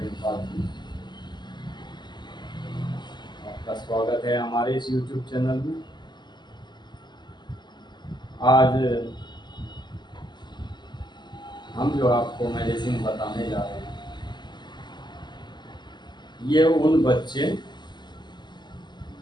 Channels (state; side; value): late; right; 0.21 ms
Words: Singh. आपका स्वागत है हमारे इस यूट्यूब चैनल में। आज हम जो आपको मेडिसिन बताने जा रहे हैं, ये उन बच्चे,